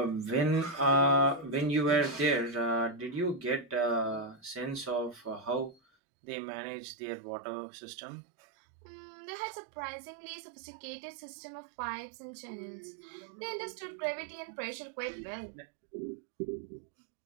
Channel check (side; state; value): left; drops out; at 5.8 s